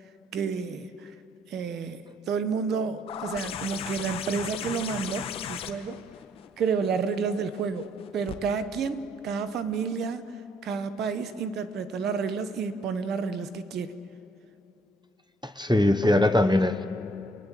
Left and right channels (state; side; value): normal; both; correlation 0.66